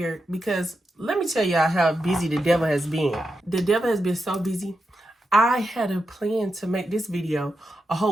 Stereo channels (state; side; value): normal; both; correlation 0.87